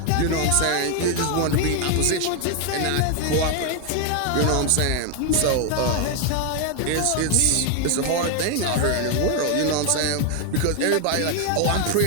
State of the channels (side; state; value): both; different; correlation 0.01